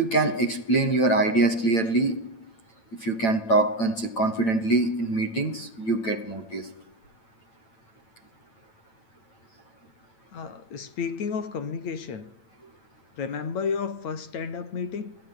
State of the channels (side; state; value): right; late; 9.0 ms